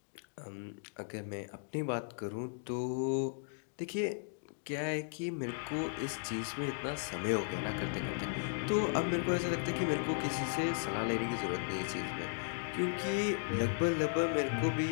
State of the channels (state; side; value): silent; right; digital silence